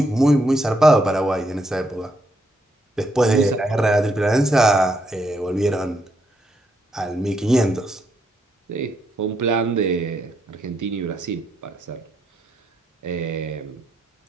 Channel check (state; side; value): normal; both; correlation 0.77